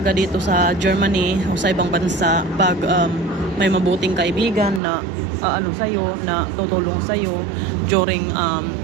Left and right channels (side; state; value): left; drops out; at 4.8 s